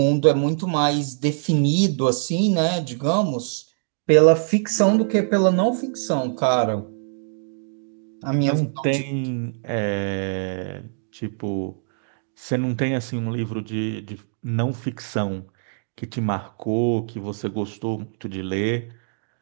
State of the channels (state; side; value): silent; left; digital silence